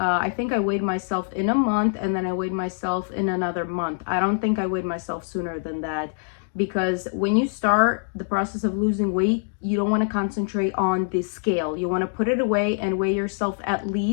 think I weighed myself in a month, and then I weighed myself in another month. I don't think I weighed myself sooner than that, because when you start the process of losing weight, you don't want to concentrate on the scale. You want to put it away and weigh yourself at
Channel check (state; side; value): silent; right; digital silence